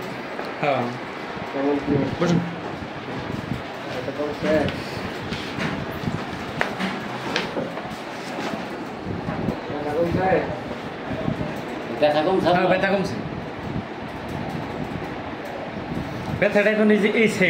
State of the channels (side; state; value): both; identical; correlation 1.00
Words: হ্যাঁ বসুন। ব্যথা কমছে? হ্যাঁ ব্যথা কমছে। ব্যথাটা এখন এই যে এই